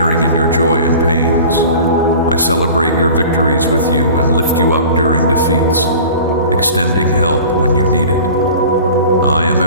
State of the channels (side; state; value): both; inverted; correlation -0.41